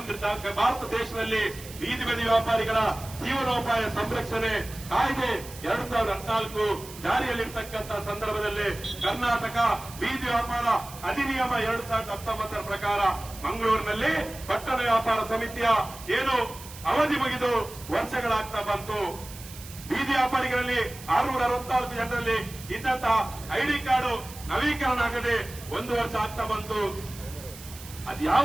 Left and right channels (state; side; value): noise; right; hiss, 16 dB below the sound